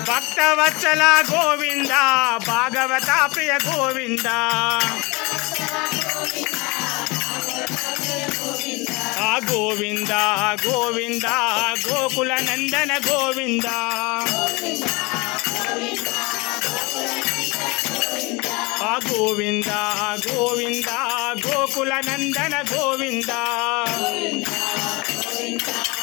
భక్త భక్తవత్సల గోవింద భాగవత ప్రియ గోవింద ఆ గోవింద గోవింద గోకుల నందన గోవింద ఆ గోవింద గోవింద గోకుల నందన గోవింద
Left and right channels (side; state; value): right; quieter; 26.1 dB